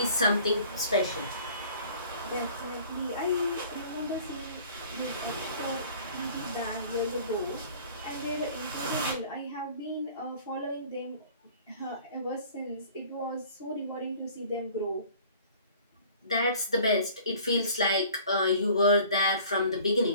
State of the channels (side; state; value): both; inverted; correlation -0.49